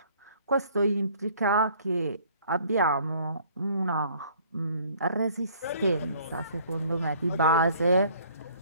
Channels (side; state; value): both; inverted; correlation -0.57